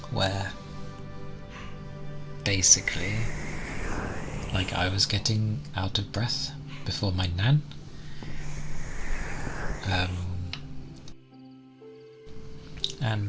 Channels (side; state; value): both; identical; correlation 1.00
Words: where basically like I was getting out of breath before my nan.